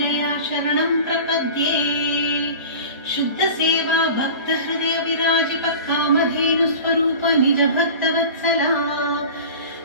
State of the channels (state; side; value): inverted; both; correlation -0.36